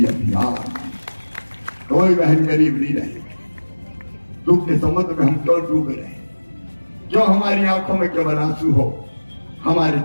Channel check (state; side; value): inverted; both; correlation -1.00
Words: अभियान। कोई बहन गरीब नहीं रहेगी। दुख के समुद्र में हम क्यों डूबे रहे, क्यों हमारी आंखों में केवल आंसू हो, हमारे